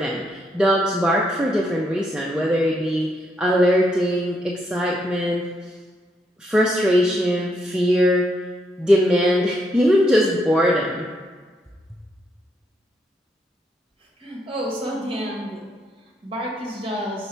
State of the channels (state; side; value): normal; both; correlation 0.77